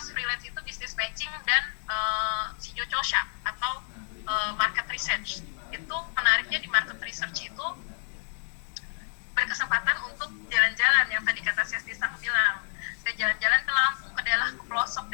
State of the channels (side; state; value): right; silent; digital silence